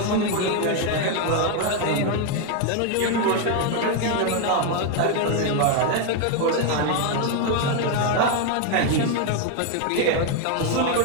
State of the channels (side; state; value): both; different; correlation 0.01